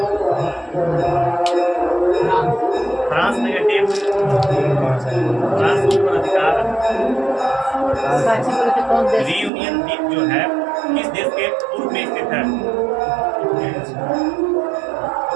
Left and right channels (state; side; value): drops out; left; at 9.5 s